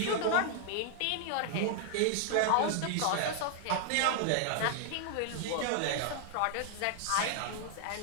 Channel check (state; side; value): different; both; correlation -0.01